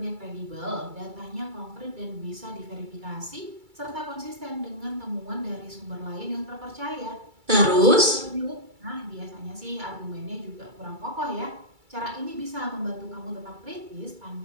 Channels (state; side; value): late; left; 2.3 ms